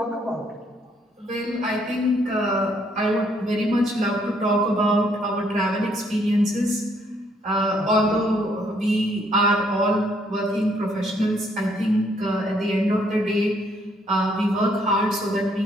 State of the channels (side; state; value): both; normal; correlation 0.68